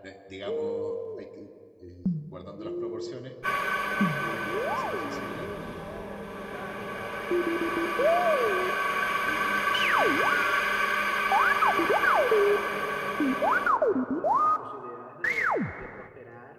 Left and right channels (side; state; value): both; identical; correlation 1.00